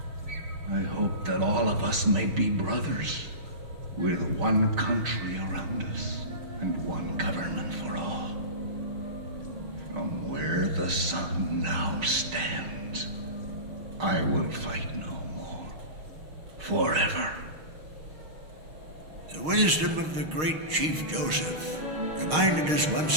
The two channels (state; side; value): late; left; 6.4 ms